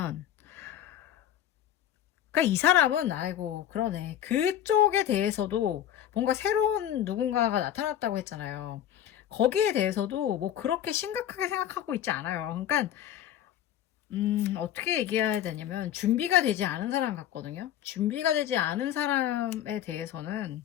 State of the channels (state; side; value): quieter; right; 11.1 dB